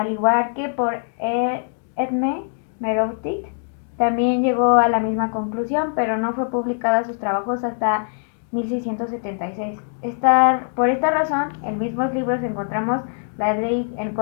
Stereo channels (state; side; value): silent; right; digital silence